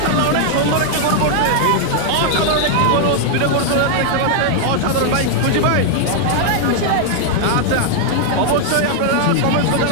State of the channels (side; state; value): both; different; correlation 0.00